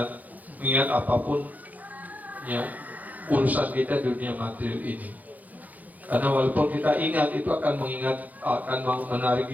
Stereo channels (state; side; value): late; left; 0.080 ms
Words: apapun, ya, urusan kita dunia material ini. Karena walaupun kita ingat, itu akan menarik